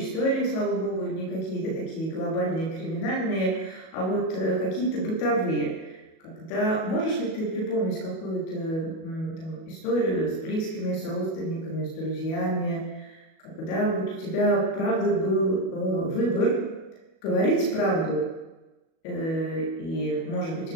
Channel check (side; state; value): right; late; 37 ms